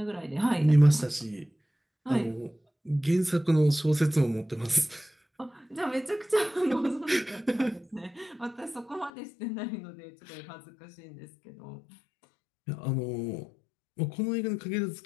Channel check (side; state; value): right; drops out; at 9.1 s